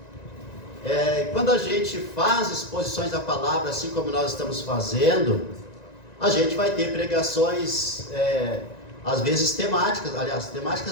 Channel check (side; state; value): right; late; 1.9 ms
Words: Quando a gente faz exposições da palavra, assim como nós estamos fazendo, a gente vai ter pregações às vezes